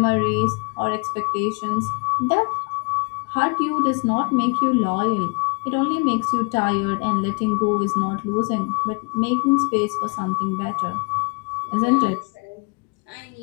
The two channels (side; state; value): right; quieter; 32.1 dB